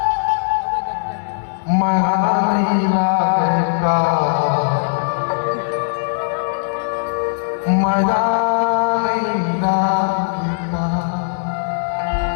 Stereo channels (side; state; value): right; silent; digital silence